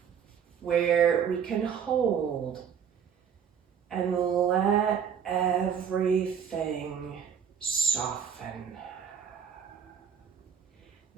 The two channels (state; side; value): quieter; left; 7.7 dB